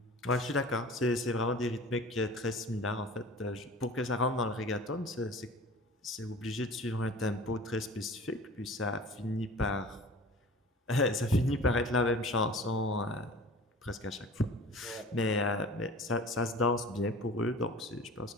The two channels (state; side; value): normal; both; correlation 0.42